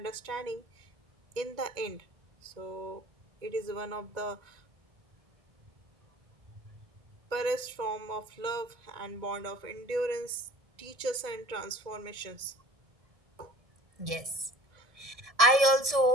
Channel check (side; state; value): left; late; 1.7 ms